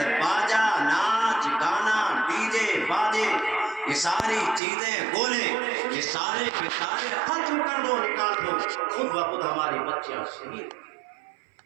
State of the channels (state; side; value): drops out; left; at 4.6 s